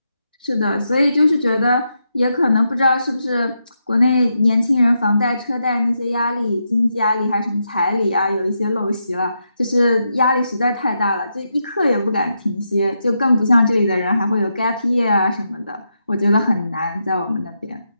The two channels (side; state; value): both; inverted; correlation -0.84